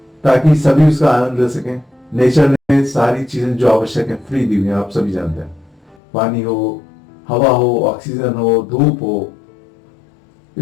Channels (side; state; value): right; drops out; at 6.0 s